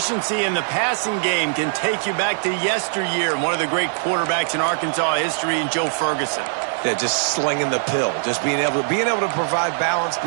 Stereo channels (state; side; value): silent; left; 65 dB below the other